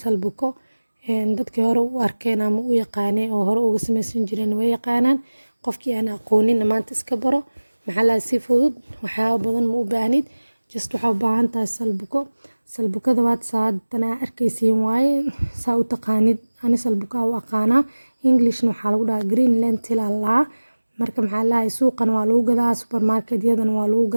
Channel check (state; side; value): inverted; both; correlation -1.00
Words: Dadkii hore u arkeen ama u yaqaaneen oo hore uga samaysan jireen way yaqaanaan. Qofkii aan aqoonin maanta iska baro. Si fudud waxyaabo badan ma u baahnid. Just waxaa u baahan tahay salbuko. Salbukada waad saadana arkaysiin waaye saa u taqaanid. Ani salbuka u aqaana. Englishna waxaa lagu dhahaa green lentil Allah. Marka suuqan waa lagu gadaa, supermarket-yadan waa lagu